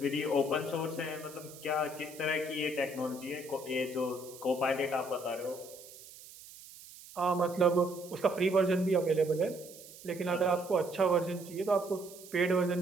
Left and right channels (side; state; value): right; noise; hiss, 18 dB below the sound